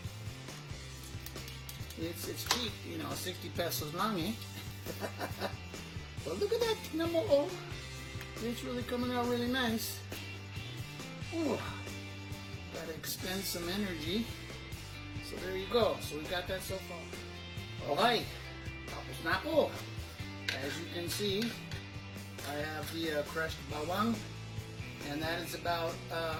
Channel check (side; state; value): both; identical; correlation 1.00